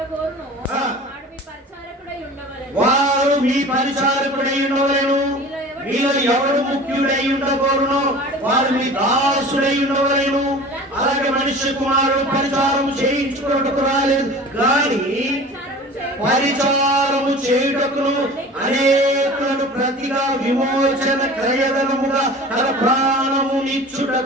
వారు మీ పరిచారకుడై ఉండవలెను. మీలో ఎవడు ముఖ్యుడై ఉండకూడను వారు మీ దాసుడై ఉండవలెను. అలాగే మనుష్య కుమారుడు పరిచారం చేయించుకున్నట్టుకు రాలేదు కానీ పరిచారము చేయుటకును అనేకులను ప్రతిగా విమోచన క్రయధనముగా తన ప్రాణము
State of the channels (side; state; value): both; normal; correlation 0.40